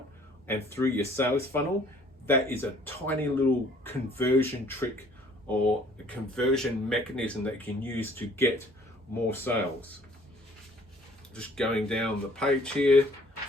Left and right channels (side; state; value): both; normal; correlation 0.57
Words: and through your sales funnel, that is a tiny little conversion trick or a conversion mechanism that you can use to get more sales. Just going down the page here,